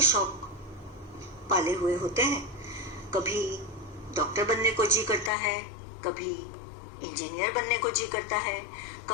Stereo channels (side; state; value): right; drops out; at 5.3 s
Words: शौक पाले हुए होते हैं। कभी डॉक्टर बनने को जी करता है, कभी इंजीनियर बनने को जी करता है,